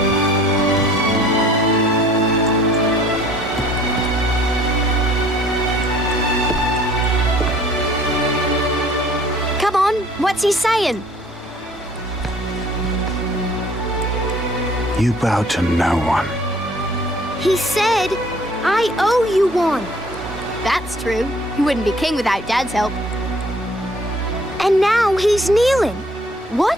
What's he saying? You bow to no one. He said, I owe you one. That's true. He wouldn't be king without Dad's help. And now he's kneeling.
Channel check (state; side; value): normal; both; correlation 0.55